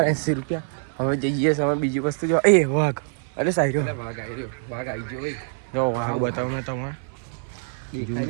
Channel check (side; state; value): left; silent; 57 dB below the other